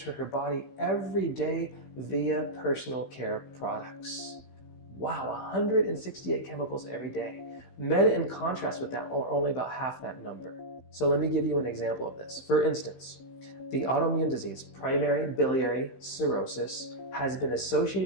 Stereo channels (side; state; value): right; late; 15 ms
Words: her body every day via personal care products. Wow, 168 chemicals every day. Men, in contrast with that, are only about half that number. So let me give you an example of this. For instance, the autoimmune disease, primary biliary cirrhosis, has been